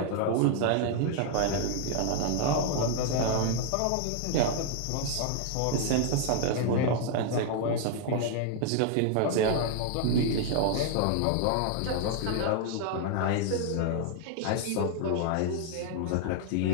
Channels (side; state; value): both; different; correlation 0.00